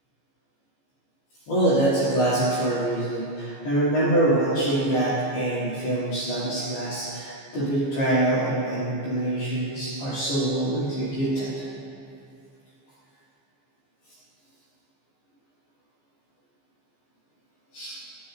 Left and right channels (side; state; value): right; late; 15 ms